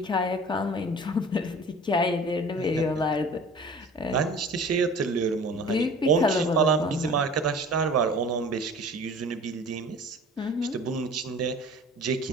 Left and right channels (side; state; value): both; normal; correlation 0.43